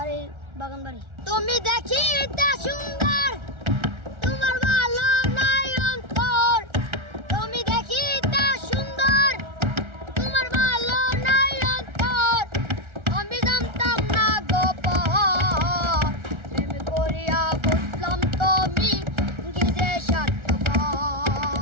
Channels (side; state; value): left; late; 1.3 ms